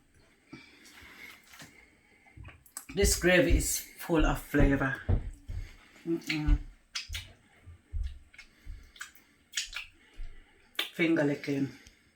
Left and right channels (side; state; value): both; identical; correlation 1.00